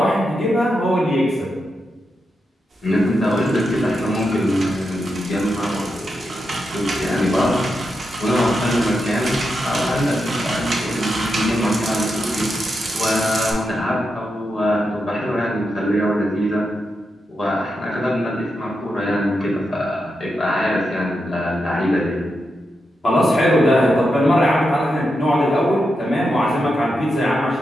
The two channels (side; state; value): both; normal; correlation 0.86